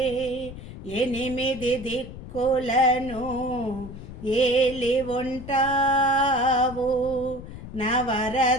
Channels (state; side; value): noise; left; rumble, 12 dB below the sound